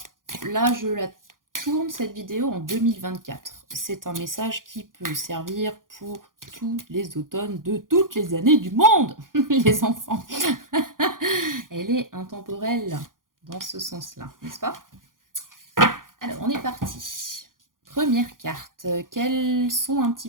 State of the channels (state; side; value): late; left; 0.90 ms